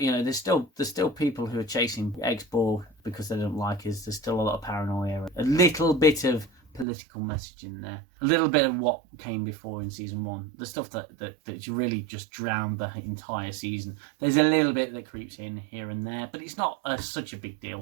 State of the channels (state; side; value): drops out; left; at 6.9 s